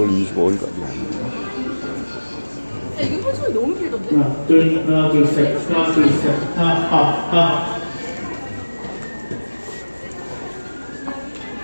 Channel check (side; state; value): both; inverted; correlation -1.00